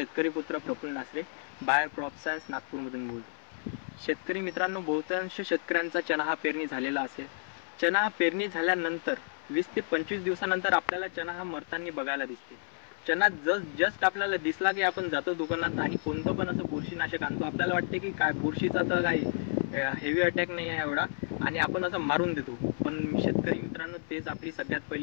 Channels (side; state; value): right; silent; 57 dB below the other